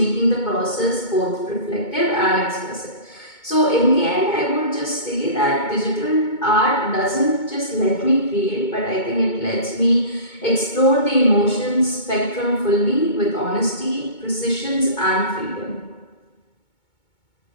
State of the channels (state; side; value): late; right; 2.2 ms